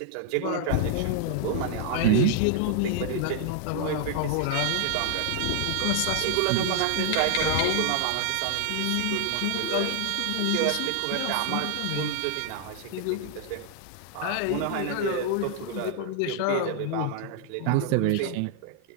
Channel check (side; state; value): both; different; correlation 0.00